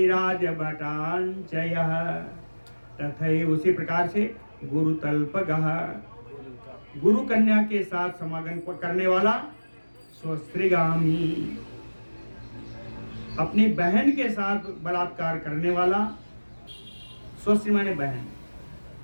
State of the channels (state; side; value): inverted; both; correlation -1.00